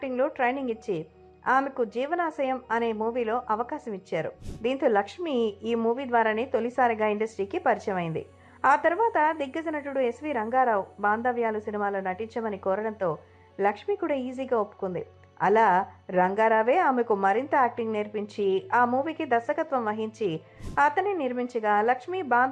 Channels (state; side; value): identical; both; correlation 1.00